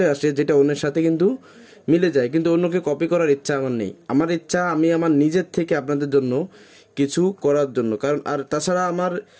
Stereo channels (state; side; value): identical; both; correlation 1.00